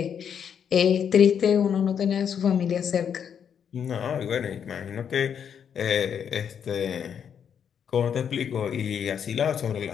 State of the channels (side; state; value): right; quieter; 7.9 dB